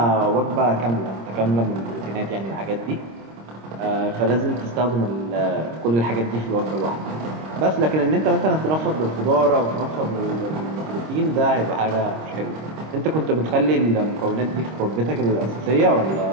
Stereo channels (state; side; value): late; left; 26 ms